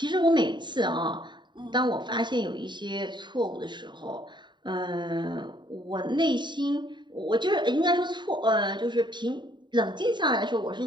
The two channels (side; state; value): left; late; 0.22 ms